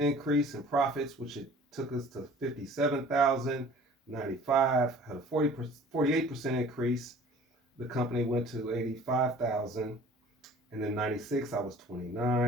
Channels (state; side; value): normal; both; correlation 0.48